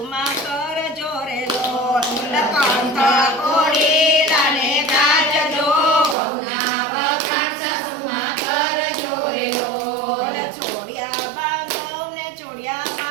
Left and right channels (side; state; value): left; drops out; at 6.2 s